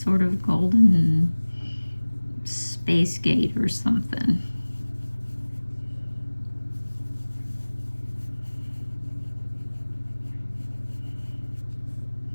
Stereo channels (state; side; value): inverted; both; correlation -1.00